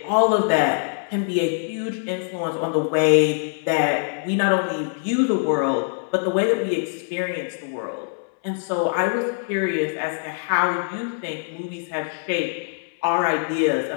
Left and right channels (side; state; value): right; silent; 63 dB below the other